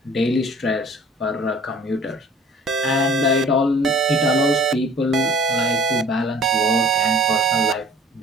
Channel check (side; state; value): both; normal; correlation 0.49